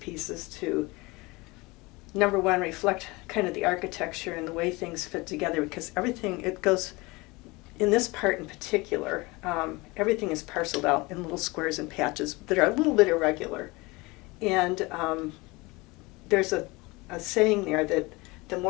to, number one, reflect kind of the architecture and the way things fit together, because it goes, in this part in particular, everything is parceled out in little squares and patches that are a little bit irregular. And there's a saying there that the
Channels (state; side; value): quieter; right; 23.8 dB